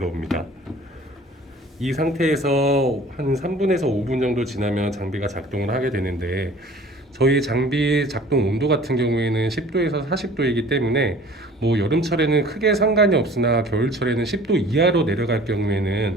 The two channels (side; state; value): both; normal; correlation 0.48